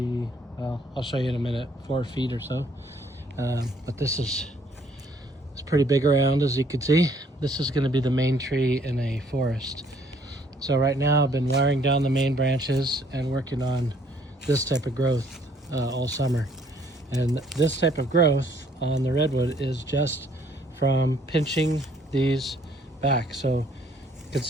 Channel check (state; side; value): normal; both; correlation 0.63